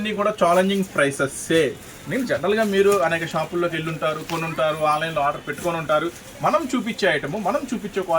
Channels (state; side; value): identical; both; correlation 1.00